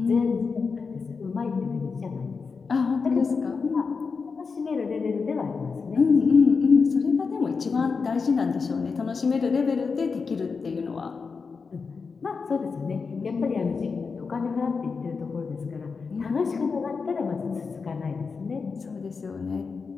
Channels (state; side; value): quieter; right; 5.0 dB